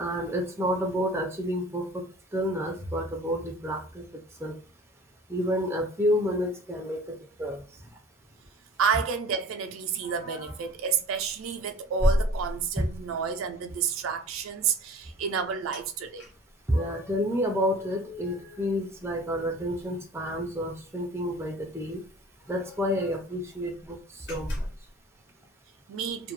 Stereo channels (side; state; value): both; normal; correlation 0.44